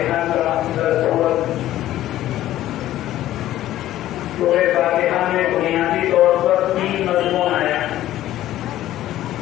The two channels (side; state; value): right; quieter; 13.8 dB